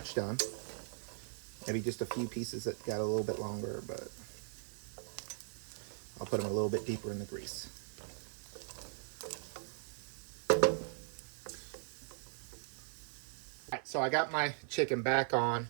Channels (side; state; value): left; silent; 52 dB below the other